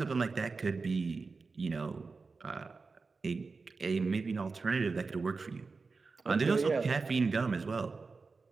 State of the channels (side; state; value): left; quieter; 4.3 dB